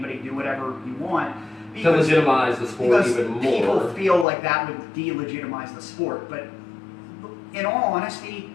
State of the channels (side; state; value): right; drops out; at 4.2 s